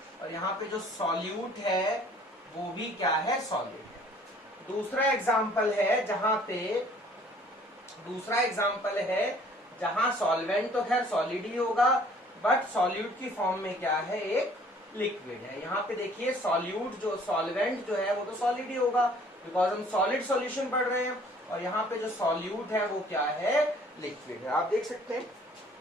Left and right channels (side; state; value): both; normal; correlation 0.56